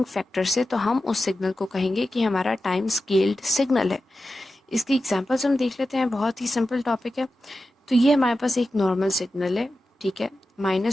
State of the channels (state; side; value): normal; both; correlation 0.92